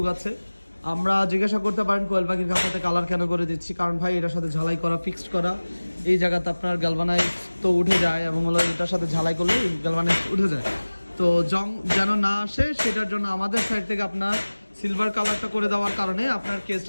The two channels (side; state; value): both; inverted; correlation -1.00